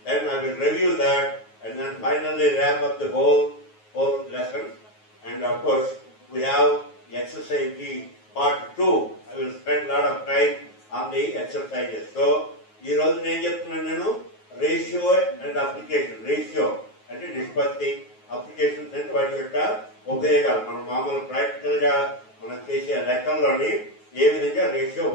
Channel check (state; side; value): late; right; 9.4 ms